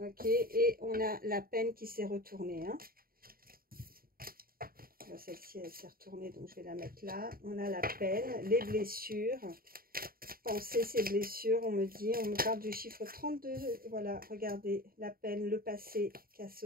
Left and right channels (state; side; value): late; left; 0.43 ms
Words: et on a la peine qui s'est retournée, hein. Celle-ci, elle s'est retournée, donc je vais la mettre là. On a la peine, les blessures. Penser ces blessures, on me parle du chiffre 32. Voilà, regardez, la peine, le passé qui a